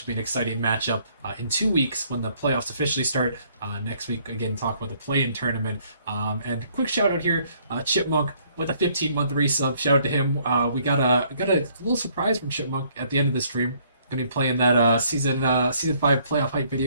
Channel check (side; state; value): both; inverted; correlation -0.64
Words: will be an exciting matchup in 2 weeks when the playoffs officially start. Next week, again, talk about the play-in tournament. And quick shout out here, Chipmunk with a 15-month resub. Shout out to him. We got a little surprise from Chipmunk at the end of the stream. Gonna be playing that season 5 playoff hype